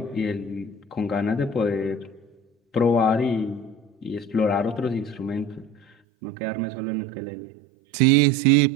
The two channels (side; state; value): left; drops out; at 5.9 s